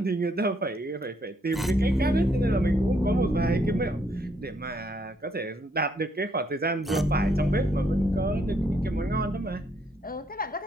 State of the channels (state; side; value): normal; both; correlation 0.72